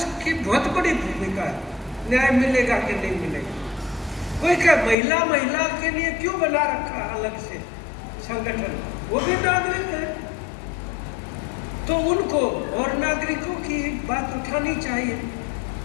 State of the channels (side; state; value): right; drops out; at 5.0 s